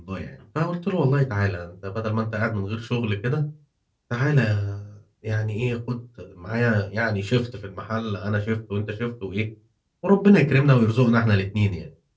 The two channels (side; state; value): both; identical; correlation 1.00